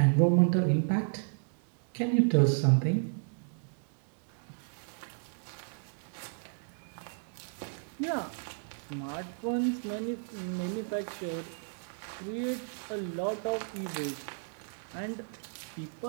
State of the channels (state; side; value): silent; left; digital silence